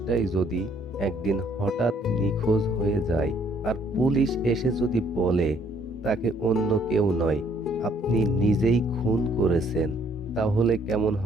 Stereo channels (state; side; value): normal; both; correlation 0.64